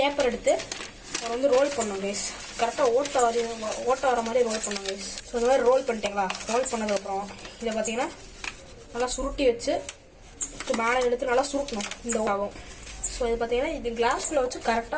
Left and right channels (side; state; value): both; identical; correlation 1.00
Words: எடுத்து அதை வந்து ரோல் பண்ணோம் கைஸ். கரெக்டாக ஓட்ட வர மாதிரி ரோல் பண்ணோம் கைஸ். ஸோ இந்த மாதிரி ரோல் பண்ணிட்டீங்களா? ரோல் பண்ணதுக்கப்புறம் இதை பார்த்தீங்கன்னா நல்லா சுருட்டி வச்சு மேலே எடுத்து நல்லா சுருட்டணும். இந்த ஆகும். ஸோ இது பார்த்தீங்கன்னா இது கிளாஸ்குள்ளே வச்சு